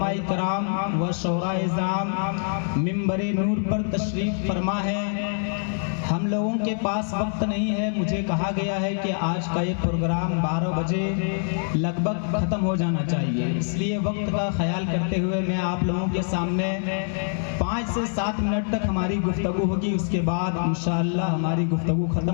کرام و شعراء اعظام منبر نور پر تشریف فرما ہے۔ ہم لوگوں کے پاس وقت نہیں ہے، مجھے کہا گیا ہے کہ آج کا یہ پروگرام 12 بجے لگ بھگ ختم ہو جانا چاہیے، اس لیے وقت کا خیال کرتے ہوئے میں آپ لوگوں کے سامنے 5 سے 7 منٹ تک ہماری گفتگو ہوگی، اس کے بعد انشاءاللہ ہماری گفتگو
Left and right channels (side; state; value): right; silent; digital silence